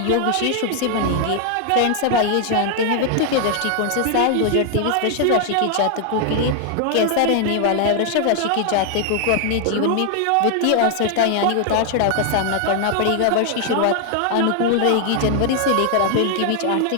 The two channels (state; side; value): different; both; correlation 0.00